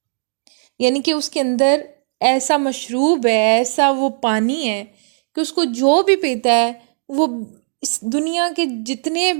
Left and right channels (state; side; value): silent; left; digital silence